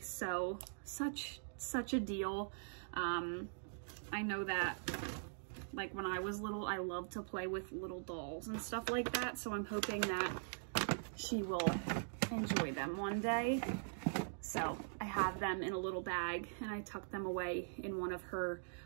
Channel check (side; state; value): left; silent; digital silence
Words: So such such a deal. I know that like when I was little, I loved to play with little dolls and stuff like that. So I'm hoping that she will enjoy them one day. So I have them in a little bag and I tuck them away in one of her